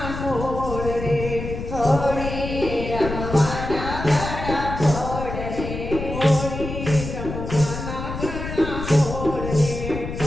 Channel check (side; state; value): left; noise; rumble, 6 dB below the sound